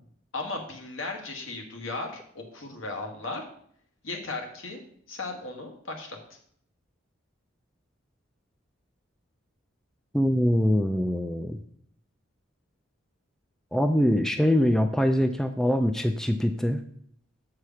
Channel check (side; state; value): both; normal; correlation 0.88